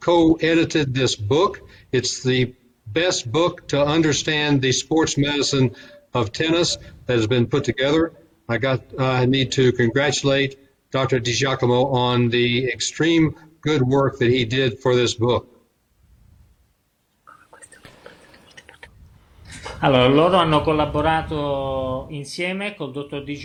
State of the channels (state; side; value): identical; both; correlation 1.00